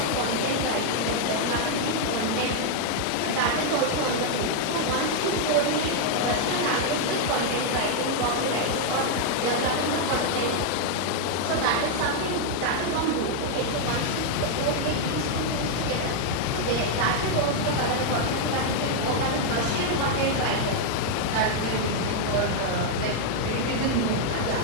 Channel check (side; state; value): both; different; correlation 0.00